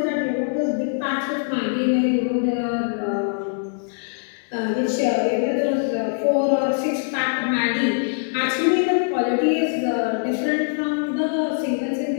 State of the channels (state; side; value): silent; right; 64 dB below the other